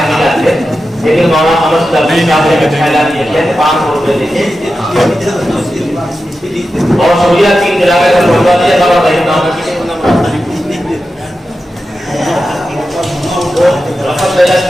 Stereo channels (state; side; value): normal; both; correlation 0.91